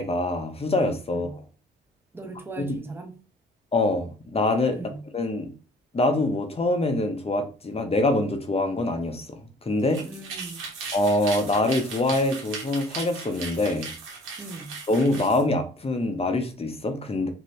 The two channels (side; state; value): both; normal; correlation 0.53